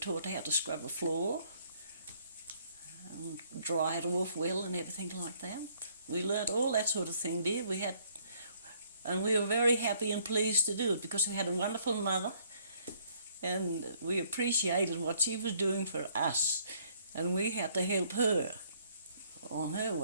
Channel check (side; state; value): both; inverted; correlation -0.64